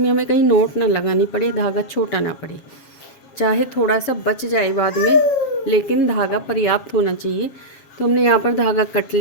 हमें कहीं नोट ना लगानी पड़े, धागा छोटा ना पड़े। चाहे थोड़ा सा बच जाए बाद में, लेकिन धागा पर्याप्त होना चाहिए। तो हमने यहाँ पर धागा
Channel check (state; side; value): late; right; 7.3 ms